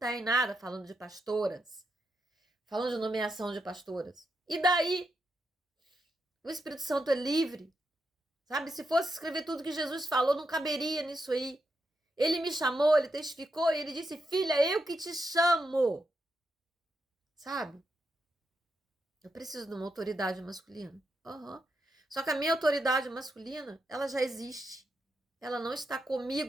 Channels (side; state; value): both; normal; correlation 0.83